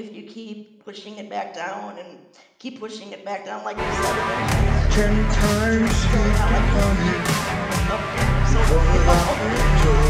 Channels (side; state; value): both; identical; correlation 1.00